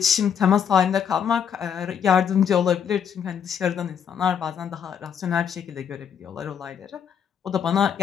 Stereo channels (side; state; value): right; quieter; 7.9 dB